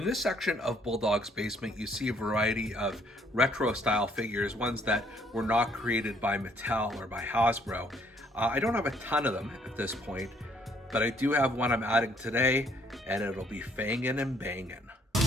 this section of Bulldog's basement, you see a variety of retro-style figures, ones that were not created by Mattel or by Hasbro. I don't have a ton of them at this point, but I do have one I'm adding today, and it'll be fangin and bangin.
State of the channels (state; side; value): normal; both; correlation 0.66